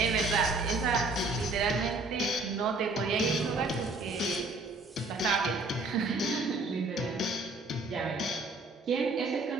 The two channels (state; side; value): quieter; left; 3.2 dB